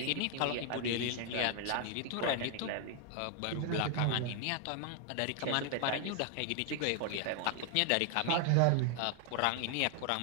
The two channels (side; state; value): both; different; correlation 0.00